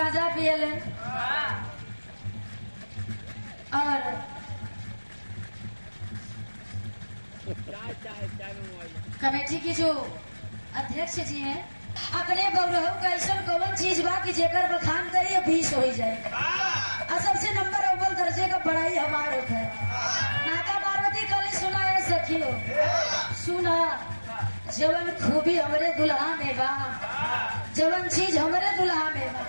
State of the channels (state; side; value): inverted; both; correlation -1.00